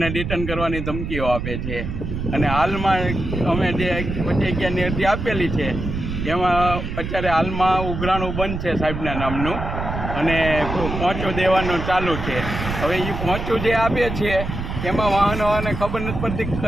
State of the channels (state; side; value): noise; right; rumble, 5 dB below the sound